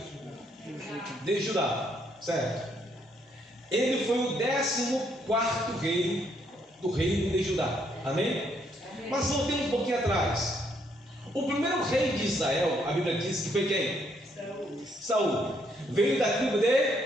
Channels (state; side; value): normal; both; correlation 0.72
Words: De Judá, certo? Ele foi o 14º rei do reino de Judá, amém? Mas voltemos um pouquinho atrás. O primeiro rei de Israel, a Bíblia diz que foi quem? Saul. Veio da tribo